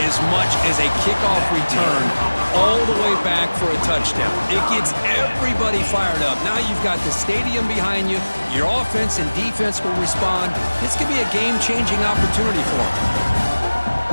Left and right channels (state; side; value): inverted; both; correlation -1.00